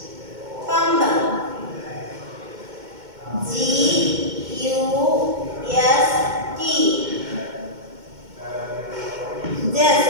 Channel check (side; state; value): left; late; 2.2 ms